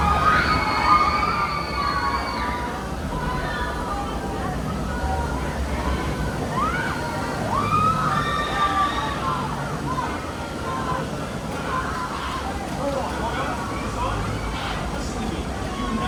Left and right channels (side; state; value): both; identical; correlation 1.00